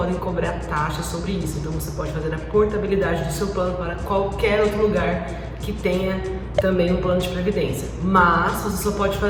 cobrar taxa sobre isso. Então você pode fazer a portabilidade do seu plano para qualquer outro lugar que tenha também um plano de previdência. Mas você só pode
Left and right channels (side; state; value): both; identical; correlation 1.00